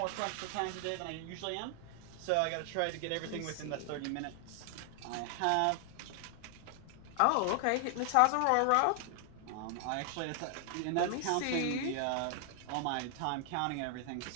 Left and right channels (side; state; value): both; different; correlation 0.00